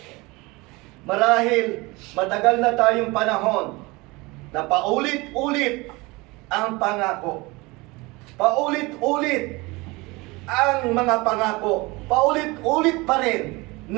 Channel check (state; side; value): quieter; left; 23.9 dB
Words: Marahil matagal na tayong panahon na paulit-ulit ang pangako. Paulit-ulit ang mga pangako. Paulit-ulit pa rin